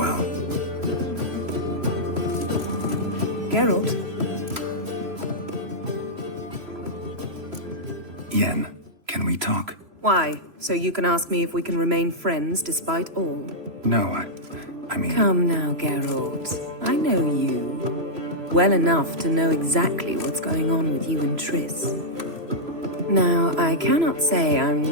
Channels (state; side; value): late; left; 3.0 ms